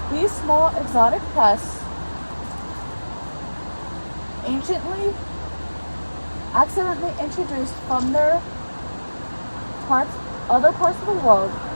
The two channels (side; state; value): both; inverted; correlation -1.00